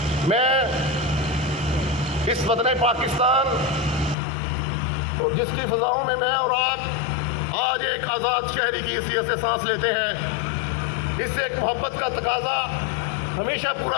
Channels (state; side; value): drops out; right; at 4.2 s